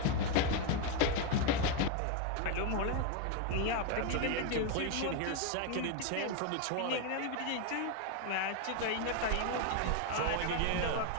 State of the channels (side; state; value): both; different; correlation 0.01